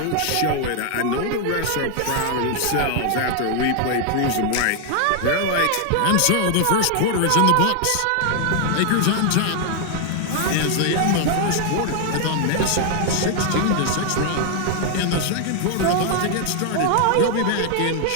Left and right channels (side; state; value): both; different; correlation 0.00